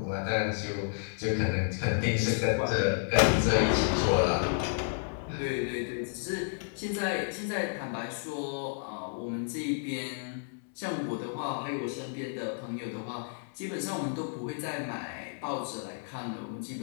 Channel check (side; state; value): right; silent; digital silence